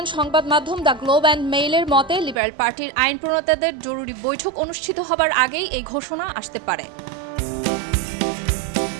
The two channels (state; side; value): drops out; left; at 2.4 s